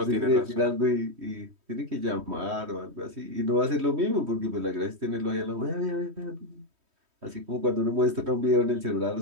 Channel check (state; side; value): late; left; 3.2 ms